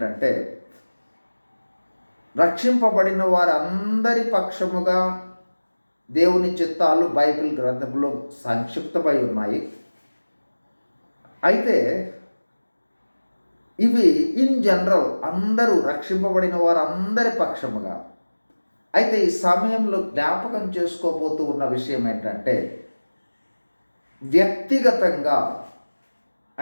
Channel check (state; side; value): inverted; both; correlation -1.00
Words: రక్షింపబడిన వారందరి పక్షముగా దేవుని చిత్తాలు బైబిల్ గ్రంథంలో సంక్షిప్తమై ఉన్నాయి. అయితే ఇవి ఇన్ జనరల్ అందరూ రక్షింపబడిన వారందరి పక్షముగా. అయితే ఈ సమయంలో జ్ఞాపకం చేసుకోబోతూ ఉన్న విషయం ఏంటంటే, వ్యక్తిగతంగా,